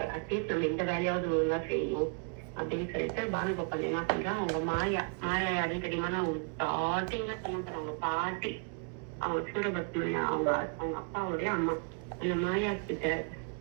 அட்லீஸ்ட் நம்ம இந்த வேலையாவது ஒழுங்கா செய்யணும் அப்படின்னு சொல்லிட்டு பானுகோபால் என்ன பண்றான், அவங்க மாயா யாரும் தெரியுமா, அவங்க ஸ்டார்டிங்ல பண்ண போறாங்க பாட்டி, அவங்க சூரபத்மன் அவங்க அப்பாவுடைய அம்மா. அந்த மாயா கிட்ட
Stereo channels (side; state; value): left; quieter; 39.5 dB